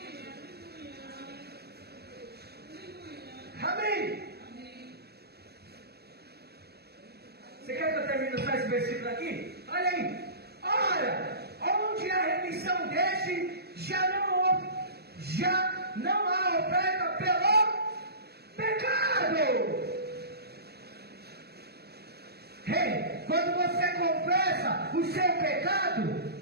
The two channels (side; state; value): left; late; 0.47 ms